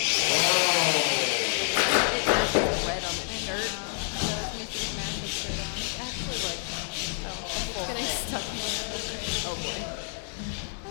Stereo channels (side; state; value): right; silent; 55 dB below the other